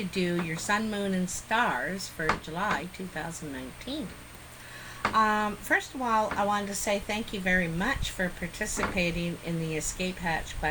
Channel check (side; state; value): both; identical; correlation 1.00